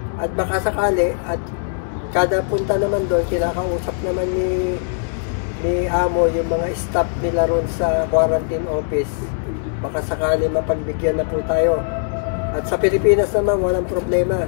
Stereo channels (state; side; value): silent; right; digital silence